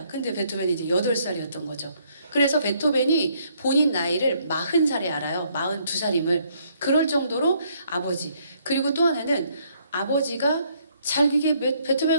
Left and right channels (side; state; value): both; inverted; correlation -0.68